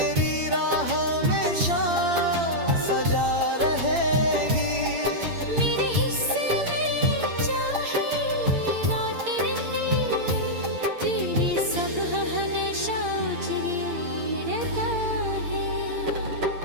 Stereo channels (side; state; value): left; late; 8.8 ms